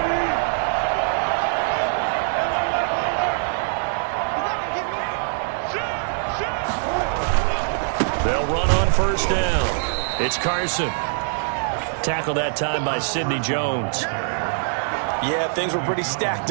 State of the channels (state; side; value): silent; left; digital silence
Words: They'll run on 1st down. It's Carson. Tackled that time by Sidney Jones. Yeah, things were pretty stacked